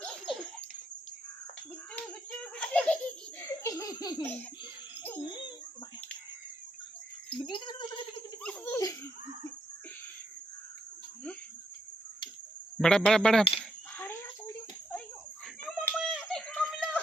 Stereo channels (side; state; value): both; normal; correlation 0.78